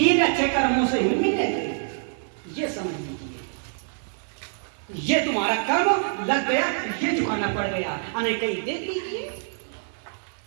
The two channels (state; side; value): silent; left; 61 dB below the other